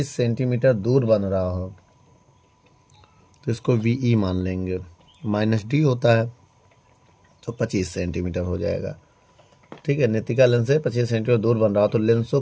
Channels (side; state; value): both; identical; correlation 1.00